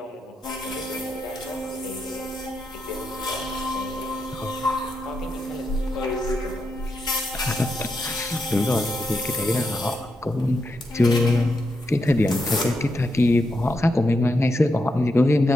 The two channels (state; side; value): normal; both; correlation 0.84